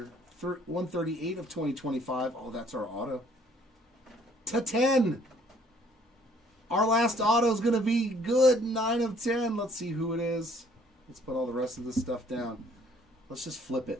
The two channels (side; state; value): both; normal; correlation 0.60